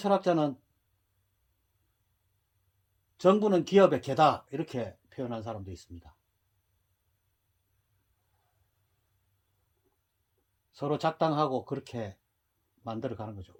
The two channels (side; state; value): both; identical; correlation 1.00